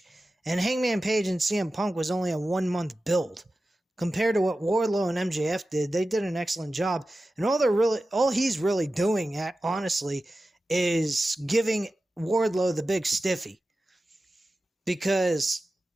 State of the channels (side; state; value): both; normal; correlation 0.94